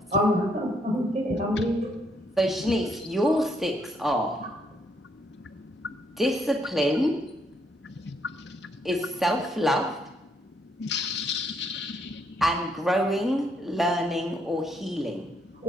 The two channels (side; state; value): both; normal; correlation 0.73